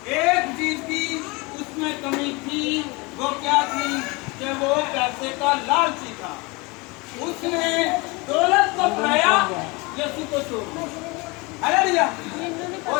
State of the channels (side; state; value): right; quieter; 25.9 dB